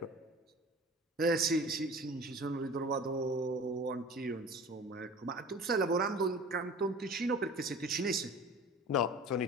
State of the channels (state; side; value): normal; both; correlation 0.41